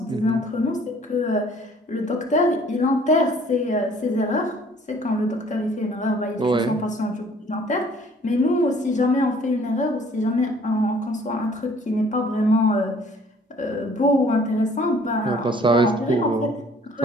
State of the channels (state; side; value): normal; both; correlation 0.56